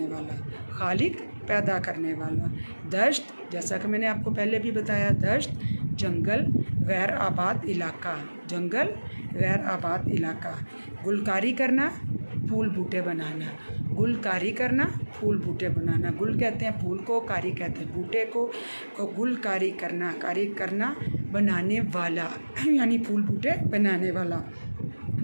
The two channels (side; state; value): both; inverted; correlation -1.00